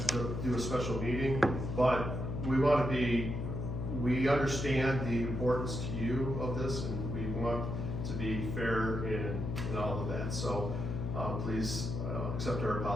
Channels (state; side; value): noise; left; hum, 3 dB below the sound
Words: to do a special meeting, but we understand the importance to you of this, and we want to be fair in all of that. So, please, accept our